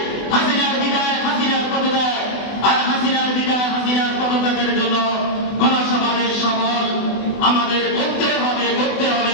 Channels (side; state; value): right; late; 24 ms